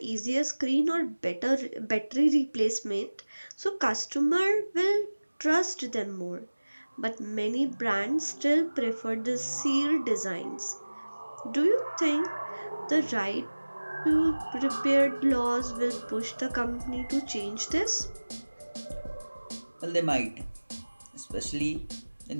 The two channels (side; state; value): both; inverted; correlation -1.00